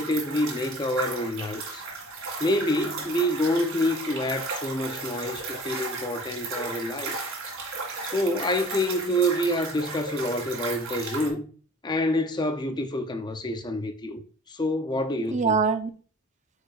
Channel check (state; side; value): normal; both; correlation 0.46